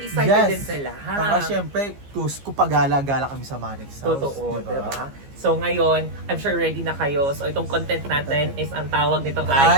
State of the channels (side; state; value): left; late; 15 ms